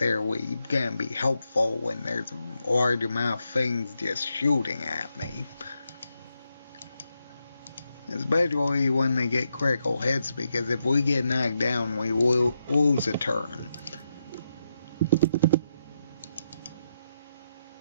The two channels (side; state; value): both; inverted; correlation -0.83